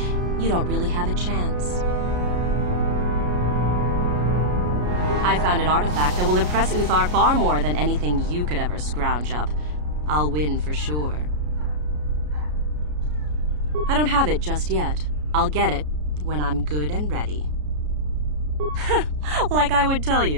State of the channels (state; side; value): late; left; 33 ms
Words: You don't really have a chance. I found an artifact that will impress Uthar far more than anything you could ever scrounge up. I'll win for sure. I don't have it just yet. I'll get it when I'm good and ready. Like I would tell